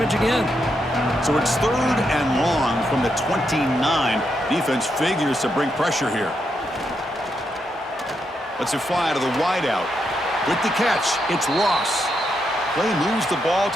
again. So it's third and long from the 29. Defense figures to bring pressure here. Let's it fly to the wideout. With the catch, it's Ross. Play moves the ball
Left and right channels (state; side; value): normal; both; correlation 0.81